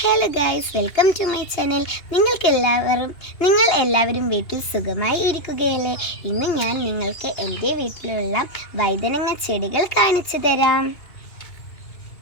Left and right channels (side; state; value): right; late; 2.9 ms